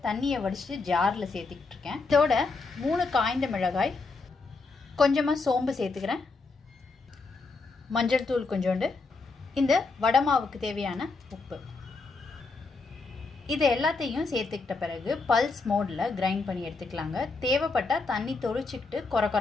தண்ணியை வடிச்சிட்டு ஜாரில் சேர்த்துக்கிட்டு இருக்கேன். இதோட 3 காய்ந்த மிளகாய், கொஞ்சமாக சோம்பு சேர்த்துக்கிறேன், மஞ்சள் தூள் கொஞ்சோண்டு, இந்த வடை மாவுக்கு தேவையான உப்பு. இது எல்லாத்தையும் சேர்த்துக்கிட்ட பிறகு பல்ஸ் மோடில் கிரைண்ட் பண்ணி எடுத்துக்கலாங்க. தேவைப்பட்டால் தண்ணி தொளிச்சிக்கிட்டு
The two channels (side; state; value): right; quieter; 4.0 dB